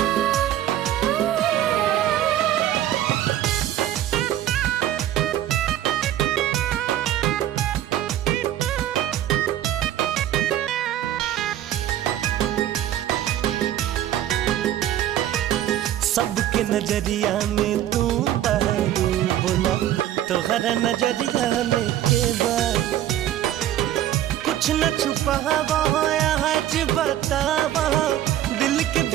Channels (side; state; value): left; quieter; 12.3 dB